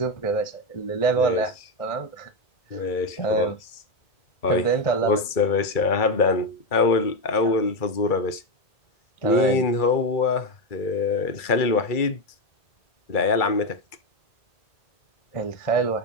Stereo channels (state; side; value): late; right; 2.3 ms